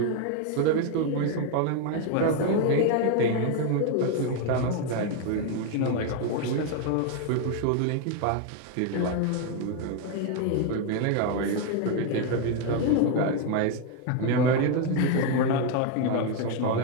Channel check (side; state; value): both; different; correlation 0.01